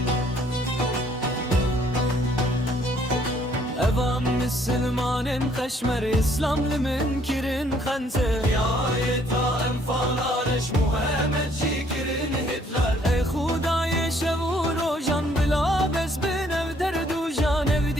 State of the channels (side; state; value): both; normal; correlation 0.64